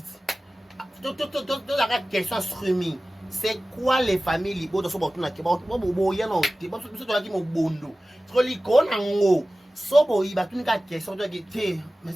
tozaka question streaming c'est quoi les familles libota so batunaki boyana te biso tolaki mobondo siko likona ngo so boyi batunika question toyaki te mais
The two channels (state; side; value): normal; both; correlation 0.96